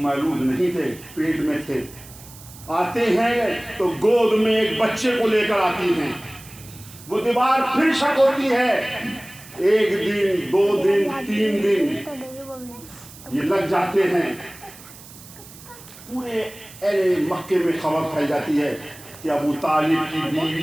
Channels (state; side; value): noise; right; hiss, 19 dB below the sound